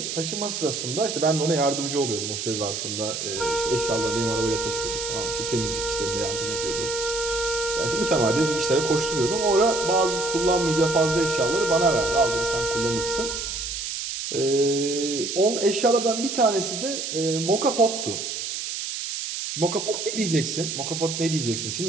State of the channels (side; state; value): right; noise; hiss, 4 dB below the sound